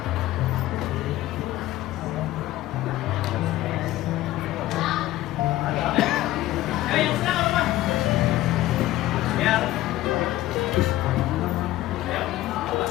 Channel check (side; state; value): right; quieter; 15.8 dB